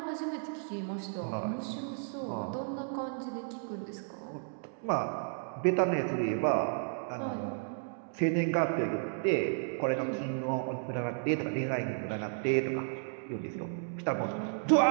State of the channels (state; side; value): silent; left; digital silence